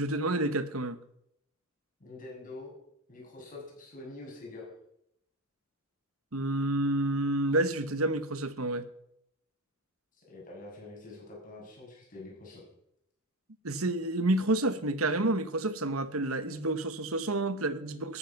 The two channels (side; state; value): both; normal; correlation 0.18